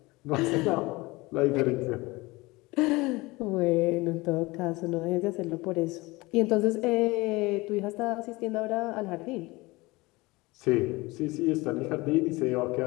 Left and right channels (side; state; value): right; quieter; 22.3 dB